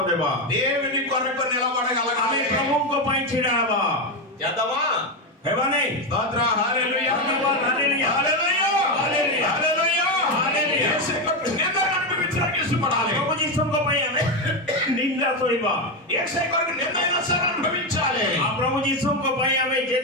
ଦେବା। దేవుని కొరకు ଆମେ నిలబడగలగాలి. ପ୍ରଭୁଙ୍କ ପାଇଁ ଛିଡା ହେବା, చేద్దామా? ହେବା ନାହିଁ? స్తోత్ర, హల్లెలూయా, ଧନ୍ୟବାଦ, ହାଲେଲୁୟା, హల్లెలూయా, ହାଲେଲୁୟା, హల్లెలూయా. ହାଲେଲୁୟା। యేసు కొరకు నిందను అనుభవించడానికి ఇష్టపడాలి. ପ୍ରଭୁ ଯୀଶୁଙ୍କ ପାଇଁ ଆମେ ନିନ୍ଦା ସହିବା, యేసు కొరకు నిందైనా సరే అనుభవించాలి. ଆଉ ପ୍ରଭୁ ଯୀଶୁଙ୍କ ପାଇଁ ଆମେ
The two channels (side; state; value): both; normal; correlation 0.10